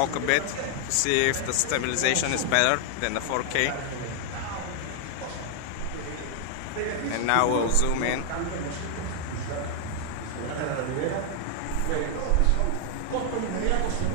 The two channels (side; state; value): both; different; correlation 0.00